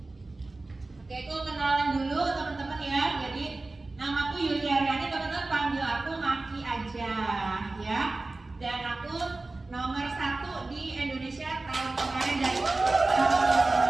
Oke, itu kenalan dulu teman-teman ya. Jadi namaku Yuliariani, teman-teman panggil aku Maki aja, ya. Dan aku nomor 1 di Indonesia tahun kemarin dari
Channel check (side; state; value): left; quieter; 3.2 dB